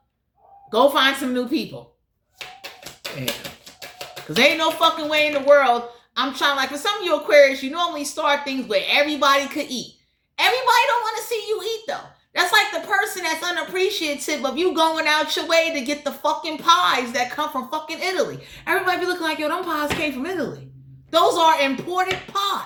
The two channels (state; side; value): identical; both; correlation 1.00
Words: go find some new people. Yeah. Because there ain't no fucking way in the world. I'm trying, like, for some of you Aquarius, you normally start things where everybody could eat. Everybody don't want to see you eat, though. That's like the person that's unappreciative of you going out your way to get the fucking pies that come from fucking Italy. Everybody be looking like, yo, them pies came from Italy. Those are imported